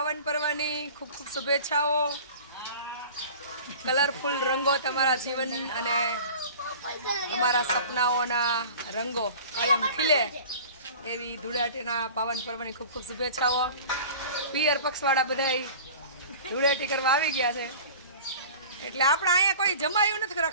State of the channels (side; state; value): both; inverted; correlation -0.41